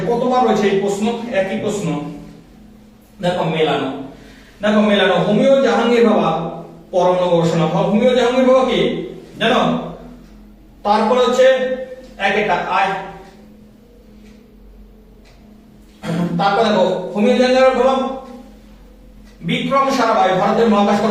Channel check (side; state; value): both; identical; correlation 1.00